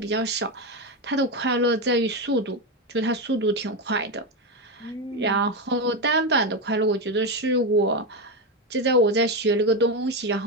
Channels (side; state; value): both; normal; correlation 0.12